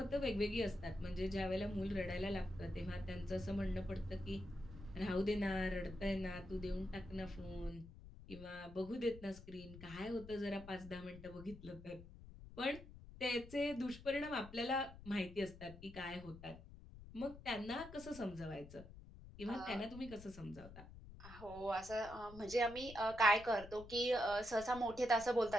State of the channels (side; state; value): left; noise; rumble, 15 dB below the sound